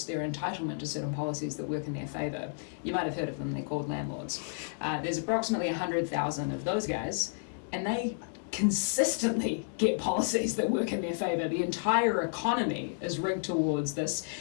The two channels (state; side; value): silent; right; digital silence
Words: their entitlement to certain policies that work in their favour. You might have heard of them, they're called landlords. There's approximately 100,000 of those guys, and they consistently get policies that work in their favour. The entire economy is rigged towards this